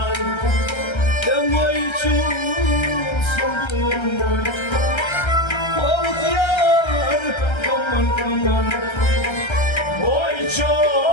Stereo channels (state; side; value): late; right; 1.3 ms